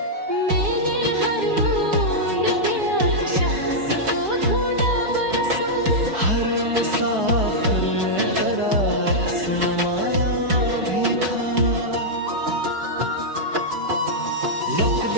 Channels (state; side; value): late; left; 4.9 ms